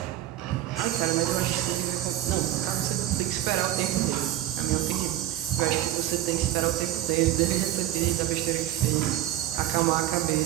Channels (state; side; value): quieter; left; 13.4 dB